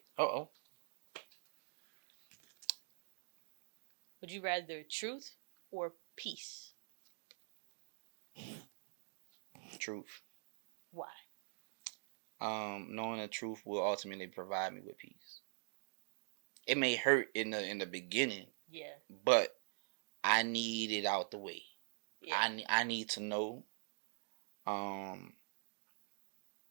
would you rather truth or peace? Truth. Why? Knowing the truth will ultimately provide me with peace. It may hurt in the beginning, but I need it out the way. I need to know, um,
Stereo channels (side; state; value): left; silent; digital silence